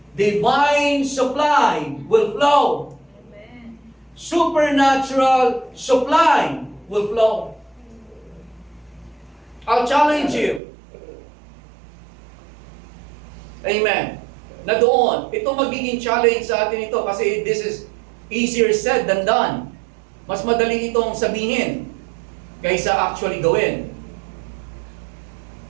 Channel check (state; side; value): drops out; left; at 10.6 s